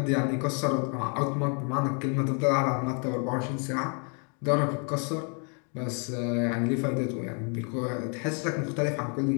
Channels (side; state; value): right; quieter; 39.1 dB